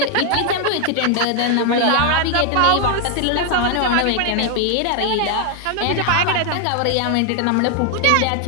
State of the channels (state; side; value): different; both; correlation 0.00